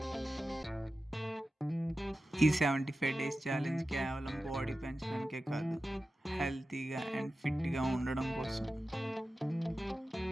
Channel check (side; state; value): both; normal; correlation 0.94